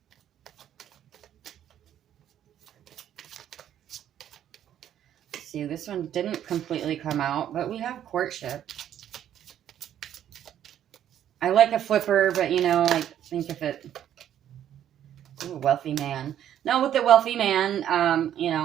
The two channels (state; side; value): quieter; left; 10.6 dB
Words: Let's see, this one didn't completely come out, but we have courtship. I like a flipper, but I think if it... Ooh, wealthy man. Now with the wealthy man,